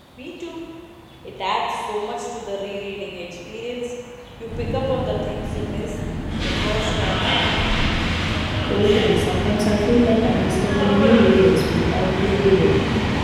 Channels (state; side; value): identical; both; correlation 1.00